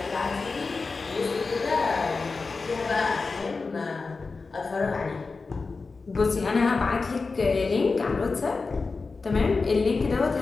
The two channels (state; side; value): quieter; right; 4.2 dB